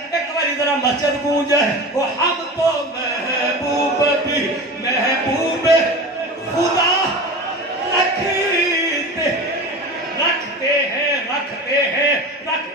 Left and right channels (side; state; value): both; normal; correlation 0.31